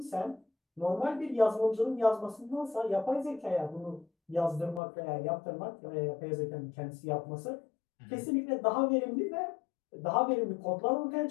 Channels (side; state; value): right; drops out; at 4.8 s